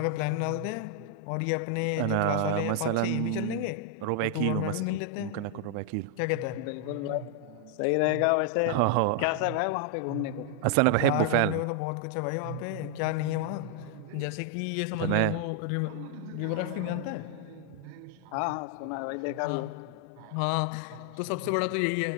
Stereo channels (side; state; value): both; different; correlation 0.00